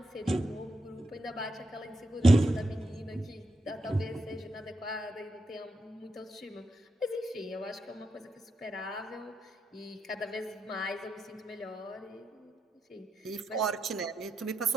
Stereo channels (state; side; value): normal; both; correlation 0.84